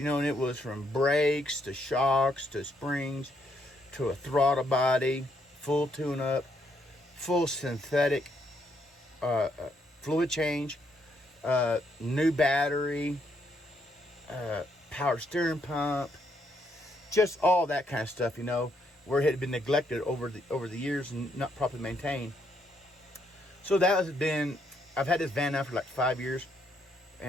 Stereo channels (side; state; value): both; normal; correlation 0.74